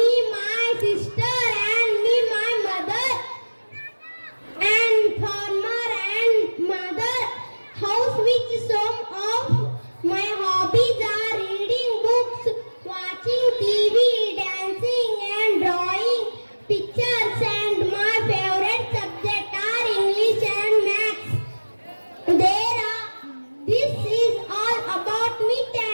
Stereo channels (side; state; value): both; inverted; correlation -1.00